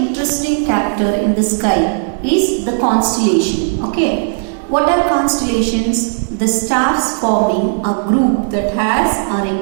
character in the sky is the constellation. Okay, what are constellations? The stars forming a group that has a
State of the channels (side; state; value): left; silent; 61 dB below the other